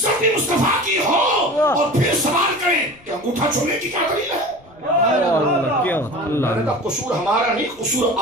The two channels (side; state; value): left; noise; rumble, 28 dB below the sound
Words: بھی مصطفیٰ کی ہو، اور پھر سوال کریں کہ انگوٹھا چھوڑنے کی کیا دلیل ہے؟ میں نے کہا قصور ہمارا نہیں، قصور